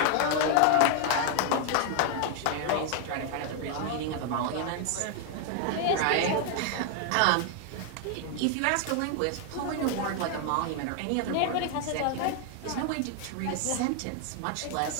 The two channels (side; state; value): both; different; correlation 0.00